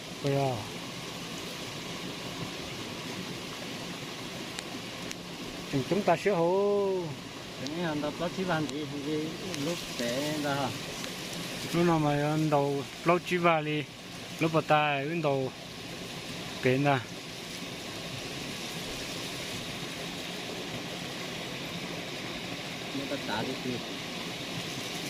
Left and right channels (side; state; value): both; identical; correlation 1.00